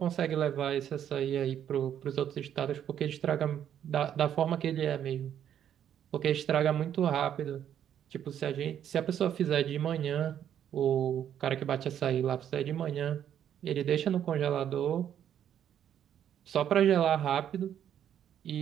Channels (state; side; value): quieter; left; 9.8 dB